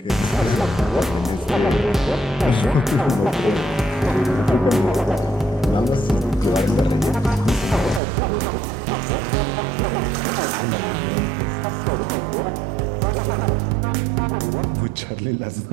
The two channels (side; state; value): left; drops out; at 8.0 s